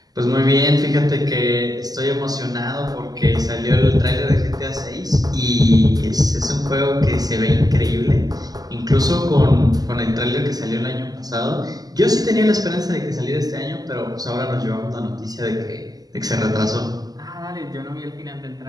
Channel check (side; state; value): left; late; 0.18 ms